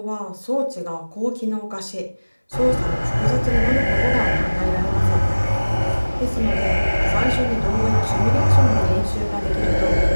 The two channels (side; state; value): both; inverted; correlation -1.00